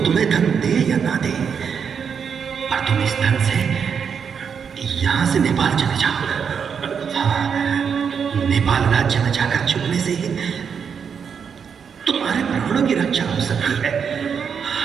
तुम्हें धन दे या ना दे, पर तुम इस धन से यहां से नेपाल चले जाओ। नेपाल राज्य में जाकर छुपने से ही तुम्हारे प्राणों की रक्षा हो सकती है।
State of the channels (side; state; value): left; quieter; 6.8 dB